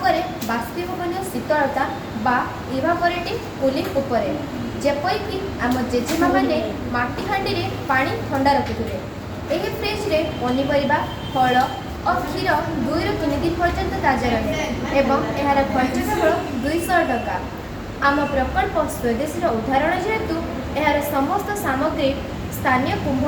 करे बाष्पीभवन शीतलता बा इवापोरेटिव कूलिंग उपर जेपरिक आम जेजेमा मैंने माटी हांडी रे पानी ठंडा रखुए। यह फ्रिज रे पनीपरिया फल और क्षीर 2 ରୁ 3 दिन पर्यंत ताजा रहे एवं यार खर्च केवल 200 टका। आम प्रकल्प स्वदेशी उदाहरण जेहेतु यार समस्त सामग्री स्थानीय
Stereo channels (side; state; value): both; identical; correlation 1.00